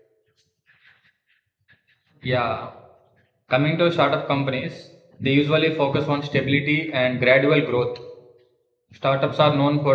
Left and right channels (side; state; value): both; identical; correlation 1.00